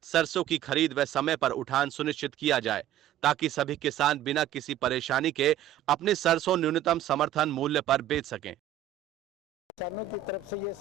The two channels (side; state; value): left; quieter; 11.1 dB